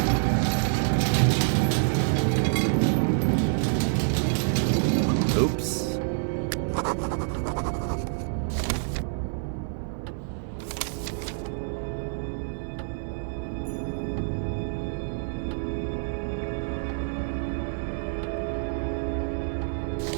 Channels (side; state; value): left; silent; digital silence